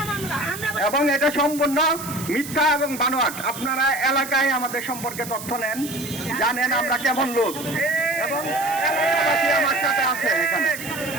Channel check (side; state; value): right; noise; hiss, 11 dB below the sound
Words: মামলা। আমরা এবং এটা সম্পূর্ণ মিথ্যা এবং বানোয়াট। আপনারা এলাকায় আমাদের সম্পর্কে তথ্য নেন, জানেন আমরা কেমন লোক, এবং এলাকাবাসী আমার সাথে আছে এখানে।